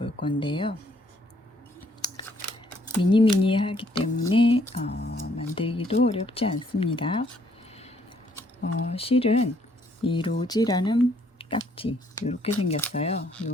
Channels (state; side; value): normal; both; correlation 0.67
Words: 건데요. 미니미니하기 때문에 만들기도 어렵지 않습니다. 실은 이 로지라는 딱지 이렇게 생겼어요.